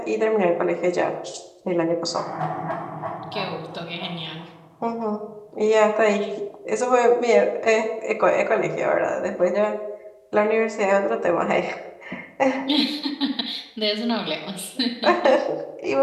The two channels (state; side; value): identical; both; correlation 1.00